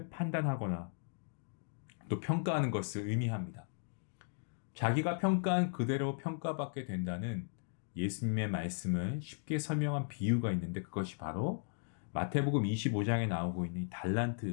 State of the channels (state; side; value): silent; right; digital silence